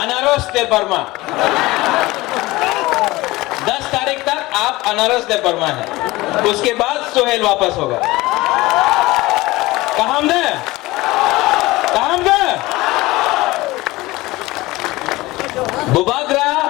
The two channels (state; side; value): quieter; right; 19.9 dB